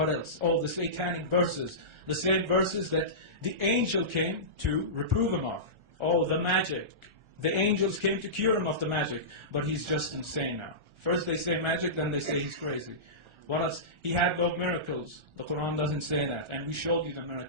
else? Oh, the satanic verses. The same verses that the angel came to reprove him of. Oh, the magic. The angels came to cure him of the magic. But he's just insane now. First they say magic, then they say he's crazy. What else? He had no miracles. The Quran doesn't say that. And we showed you the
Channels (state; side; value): late; left; 1.4 ms